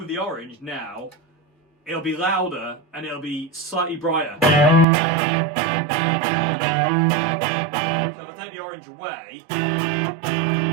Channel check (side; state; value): left; drops out; at 4.9 s